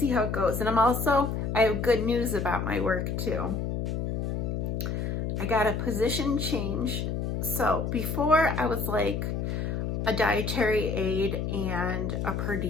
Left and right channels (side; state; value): left; noise; hum, 2 dB below the sound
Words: how it goes. And I have good news about my work too. I got a position change. So before I was like a dietary aide and a per